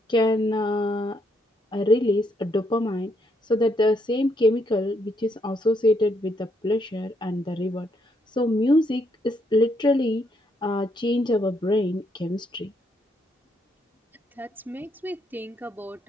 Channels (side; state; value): both; normal; correlation 0.74